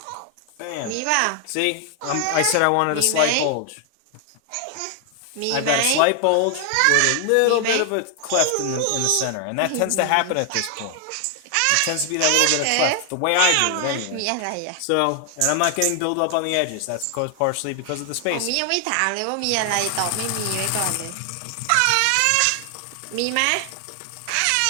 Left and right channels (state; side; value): different; both; correlation 0.00